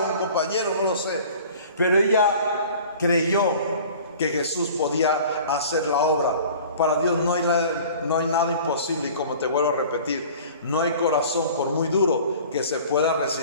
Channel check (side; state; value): both; inverted; correlation -0.45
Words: o un compañero, no lo sé, pero ella creyó que Jesús podía hacer la obra. Para Dios no hay nada imposible, y como te vuelvo a repetir, no hay corazón, por muy duro, que se pueda